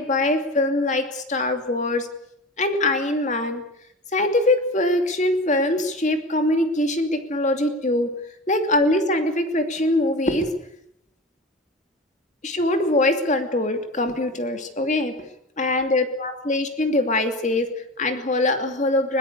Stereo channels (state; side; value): normal; both; correlation 0.31